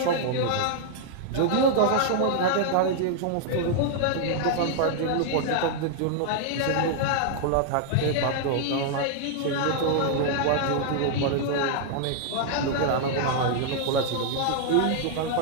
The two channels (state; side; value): different; both; correlation -0.01